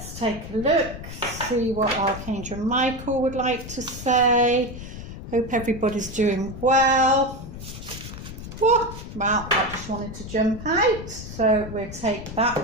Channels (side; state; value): left; noise; rumble, 11 dB below the sound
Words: take a look, see what Archangel Michael would like to say. Hope everybody's doing well. Well, I just wanted to jump out, so we'll take that